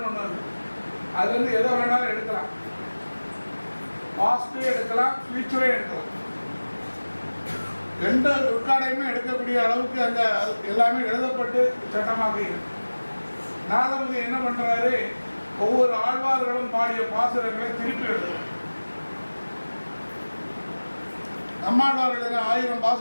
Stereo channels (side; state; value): both; inverted; correlation -1.00